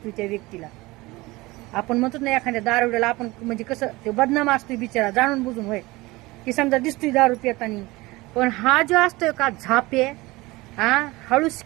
त्या व्यक्तीला. आपण म्हणतो ना एखाद्या दारुड्याला आपण म्हणजे कसं ते बदनाम असतोय बिचारा जाणून बुजून, होय की समजा दिसतोय दारू पितानी, पण हा जो असतोय का झापे, हा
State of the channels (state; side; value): quieter; left; 21.3 dB